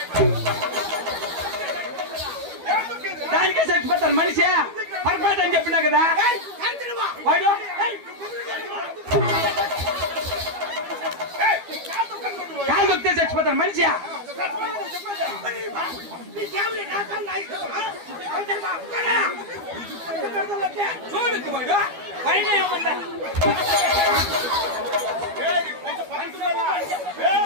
దానికే చచ్చిపోతారు మనిషి పర్ఫెక్ట్ అని చెప్పినా కదా వాడు. కాలు దొక్కితే చచ్చిపోతారు మనిషి. చూడు వాడు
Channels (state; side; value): late; left; 12 ms